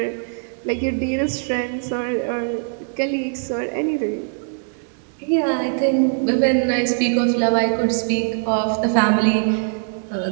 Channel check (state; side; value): silent; left; 56 dB below the other